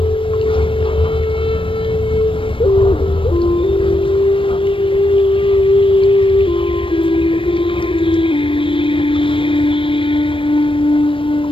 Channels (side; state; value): right; late; 0.25 ms